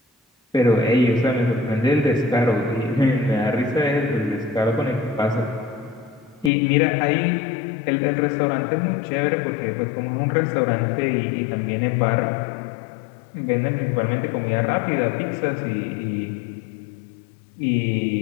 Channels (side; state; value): right; drops out; at 6.5 s